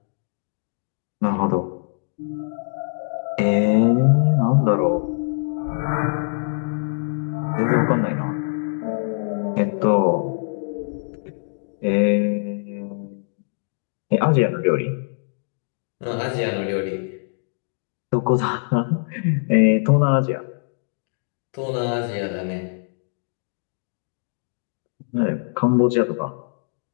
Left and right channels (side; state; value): right; silent; digital silence